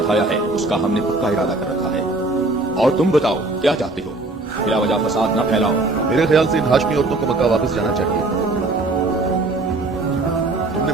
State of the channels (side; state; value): left; quieter; 3.1 dB